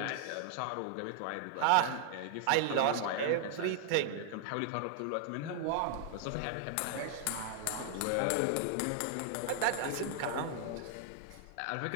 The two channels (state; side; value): different; both; correlation -0.01